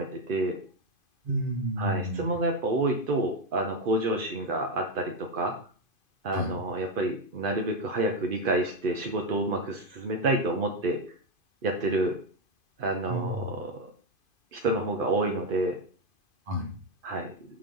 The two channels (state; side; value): late; left; 2.5 ms